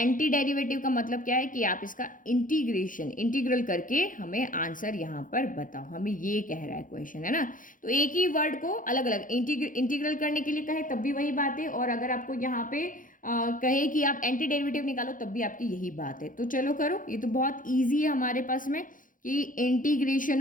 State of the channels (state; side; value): late; right; 0.39 ms